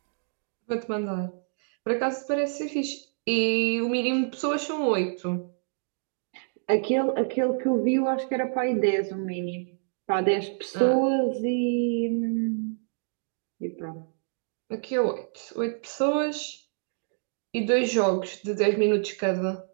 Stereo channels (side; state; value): left; silent; digital silence